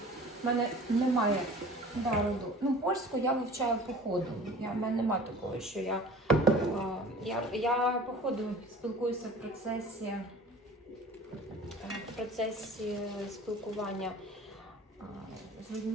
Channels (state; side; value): normal; both; correlation 0.43